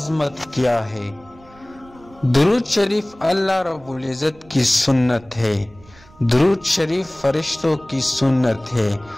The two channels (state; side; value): noise; right; rumble, 25 dB below the sound